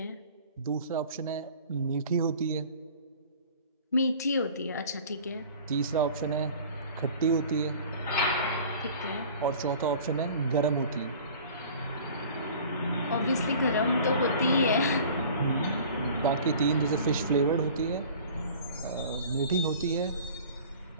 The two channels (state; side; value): inverted; both; correlation -0.45